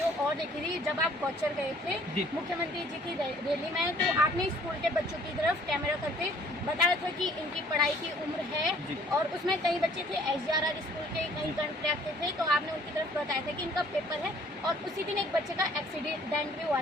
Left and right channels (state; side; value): normal; both; correlation 0.57